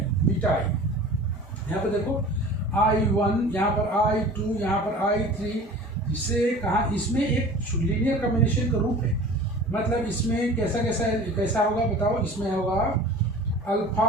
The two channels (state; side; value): normal; both; correlation 0.41